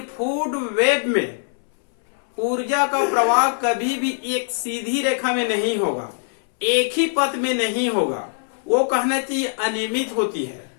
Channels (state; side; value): silent; right; 62 dB below the other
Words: फूड वेव में ऊर्जा का प्रवाह कभी भी एक सीधी रेखा में नहीं होगा, एक ही पथ में नहीं होगा, वो कहना चाहिए अनियमित होती है,